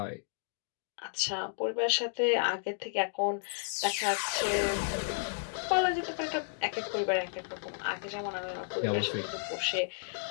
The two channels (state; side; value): silent; right; digital silence